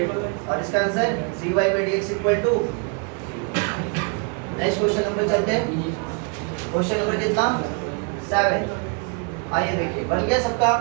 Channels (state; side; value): quieter; left; 38.0 dB